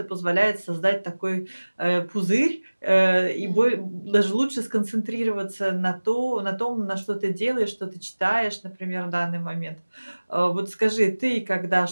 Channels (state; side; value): inverted; both; correlation -1.00